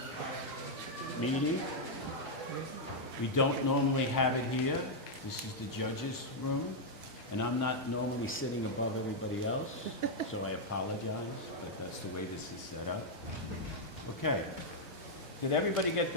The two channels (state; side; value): normal; both; correlation -0.03